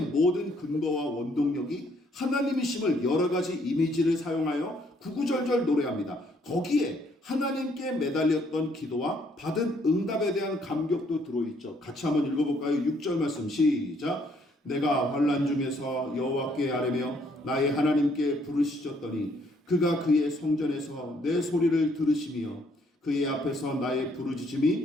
모든 근거와 원동력이 하나님이심을 여러 가지 이미지를 사용하여 구구절절 노래합니다. 거기에 하나님께 매달렸던 기도와 받은 응답에 대한 감격도 들어있죠. 같이 한번 읽어볼까요? 6절 말씀 시작. 내가 환난 중에서 여호와께 아뢰며 나의 하나님께 부르짖었더니 그가 그의 성전에서 내 소리를 들으시며 그의 앞에서 나의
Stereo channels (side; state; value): both; normal; correlation 0.67